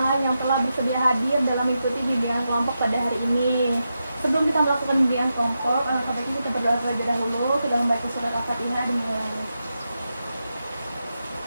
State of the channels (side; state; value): both; inverted; correlation -0.88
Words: yang telah bersedia hadir dalam mengikuti bimbingan kelompok pada hari ini. Sebelum kita melakukan bimbingan kelompok, sebaiknya kita berdoa terlebih dahulu. Kita membaca surat Al-Fatihah dan mulai.